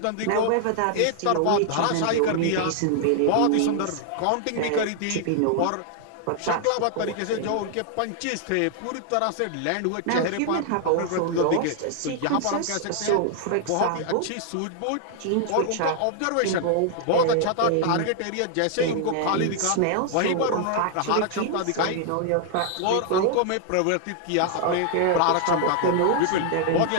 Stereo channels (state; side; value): different; both; correlation 0.00